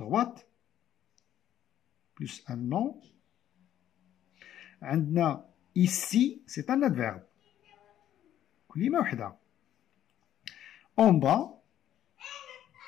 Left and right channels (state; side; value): quieter; right; 11.5 dB